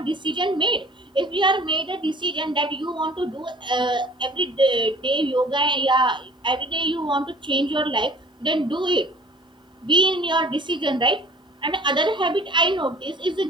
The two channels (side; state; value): both; normal; correlation 0.49